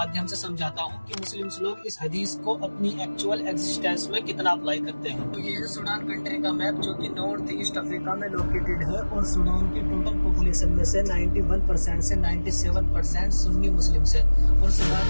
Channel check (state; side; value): inverted; both; correlation -1.00